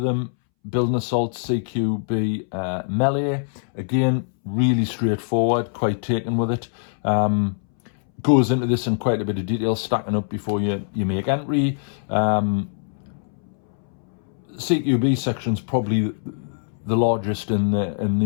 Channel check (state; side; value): silent; right; 62 dB below the other